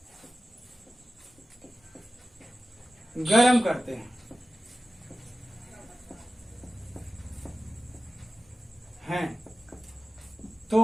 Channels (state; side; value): normal; both; correlation 0.95